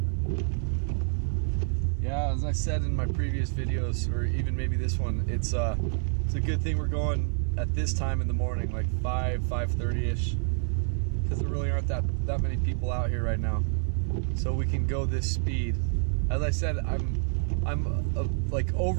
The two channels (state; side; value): silent; left; 59 dB below the other